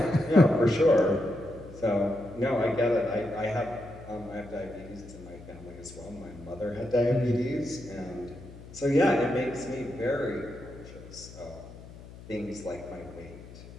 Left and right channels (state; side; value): noise; left; hum, 17 dB below the sound